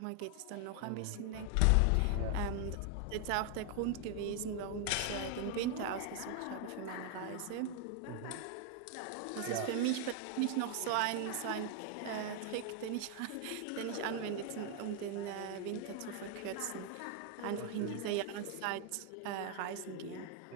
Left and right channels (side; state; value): both; different; correlation 0.00